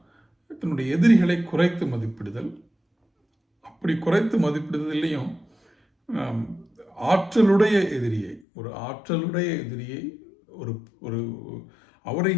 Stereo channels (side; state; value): right; drops out; at 8.5 s